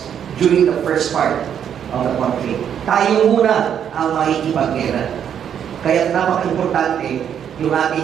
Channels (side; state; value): left; quieter; 8.8 dB